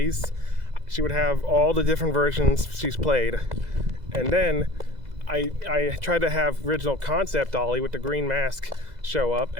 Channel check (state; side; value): late; left; 2.0 ms